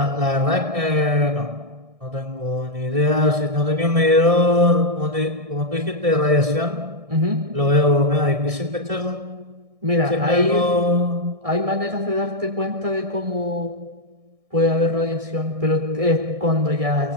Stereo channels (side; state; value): left; late; 1.6 ms